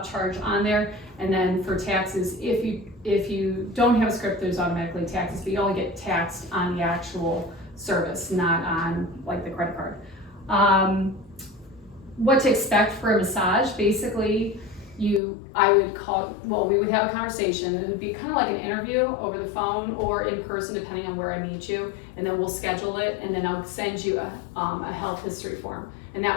on there. And then for taxes, if you don't have a script, there's automatically taxes, but you only get taxed on the actual service, not on like the credit card. What to expect for a massage? Basically, we would have a conversation. It would be kind of like an interview over the phone or in person, depending on where I meet you, and then we'll schedule it, and then I'll send you a health history form. And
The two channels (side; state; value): right; drops out; at 15.2 s